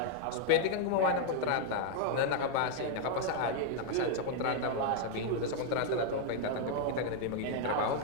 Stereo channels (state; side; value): different; both; correlation 0.00